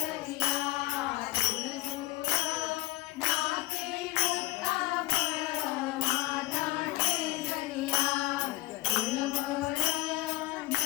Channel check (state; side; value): quieter; right; 18.9 dB